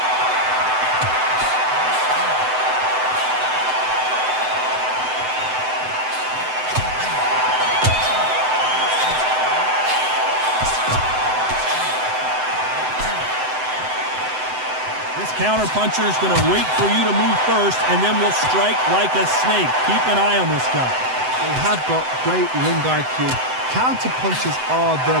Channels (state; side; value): late; left; 7.9 ms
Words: This counter-puncher is going to wait for you to move first, and then will strike like a snake. Keep an eye on this guy. They have got great ring IQ. Counter-punchers are